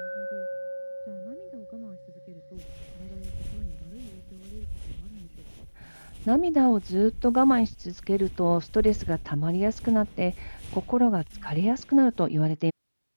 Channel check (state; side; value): inverted; both; correlation -1.00